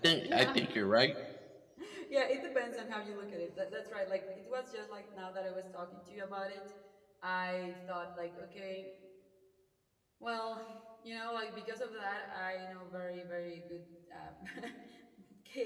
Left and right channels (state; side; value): identical; both; correlation 1.00